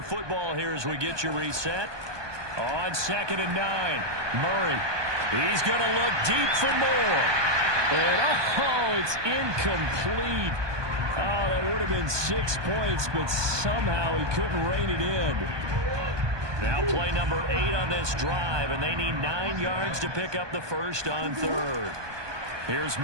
football here as we get you reset. On 2nd and 9, Murray. He's going to look deep for more. And, oh, it's incomplete. Oh, that would have been 6 points, but somehow he couldn't rein it in. Now play number 8 on this drive, and they need 9 yards to pick up the first on 3rd. Here's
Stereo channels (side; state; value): left; late; 1.2 ms